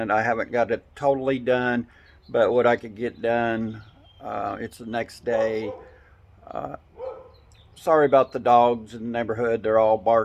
I haven't got it totally done, but what I could get done, it's the next day. Uh, Sorry about the dogs in the neighborhood. They're all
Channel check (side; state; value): both; identical; correlation 1.00